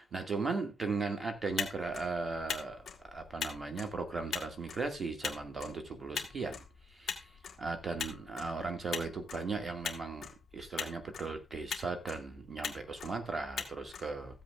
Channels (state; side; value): normal; both; correlation 0.77